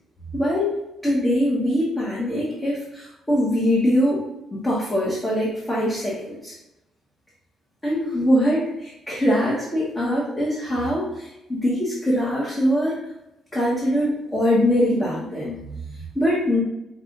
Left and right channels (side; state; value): both; normal; correlation 0.77